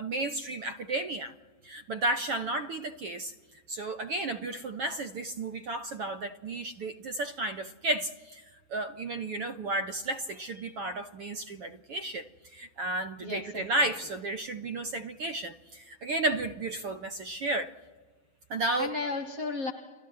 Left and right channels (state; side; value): late; left; 7.7 ms